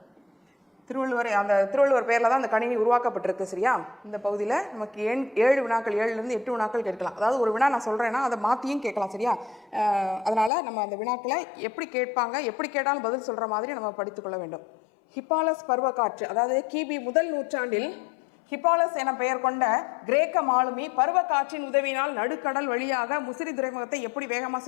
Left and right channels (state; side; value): drops out; right; at 10.5 s